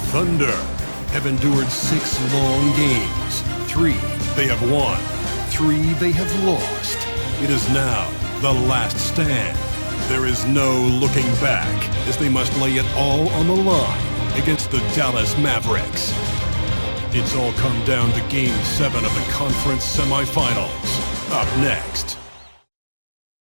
Thunder have endured 6 long games. 3 they have won, 3 they have lost. It is now the last stand. There is no looking back as they must lay it all on the line against the Dallas Mavericks. It's all come down to Game 7 of the conference semifinals. Up next.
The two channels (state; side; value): inverted; both; correlation -1.00